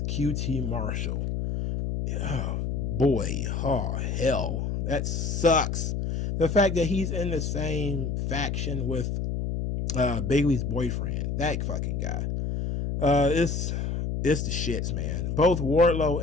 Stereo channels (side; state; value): left; noise; hum, 1 dB below the sound